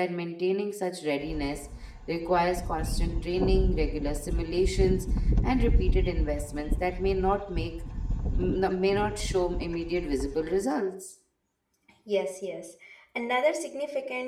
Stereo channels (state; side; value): identical; both; correlation 1.00